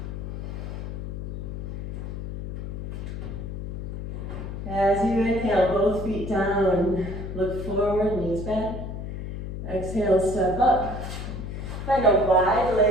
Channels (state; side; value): noise; left; hum, 7 dB below the sound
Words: As you inhale, both feet down, look forward, knees bent. Exhale, step up. Find a